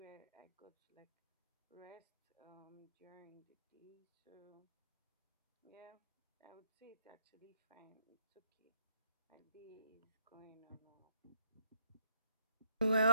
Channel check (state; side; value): inverted; both; correlation -0.71